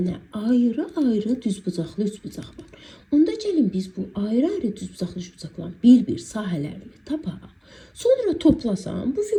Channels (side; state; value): both; identical; correlation 1.00